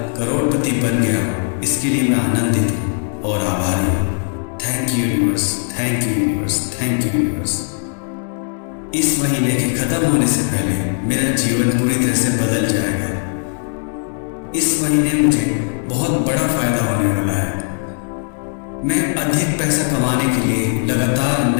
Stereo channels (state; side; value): silent; right; 56 dB below the other